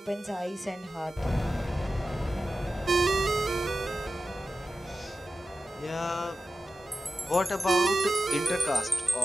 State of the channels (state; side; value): normal; both; correlation 0.94